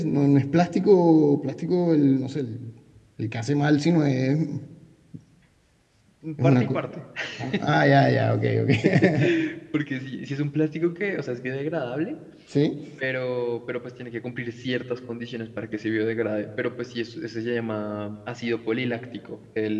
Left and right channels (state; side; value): identical; both; correlation 1.00